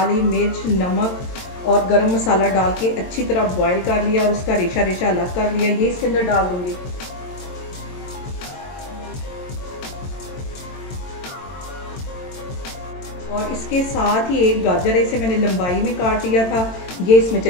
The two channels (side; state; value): right; late; 22 ms